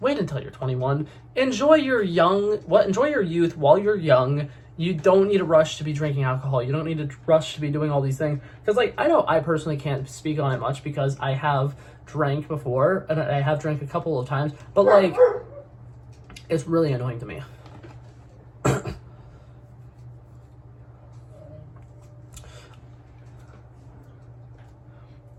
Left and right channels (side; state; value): both; identical; correlation 1.00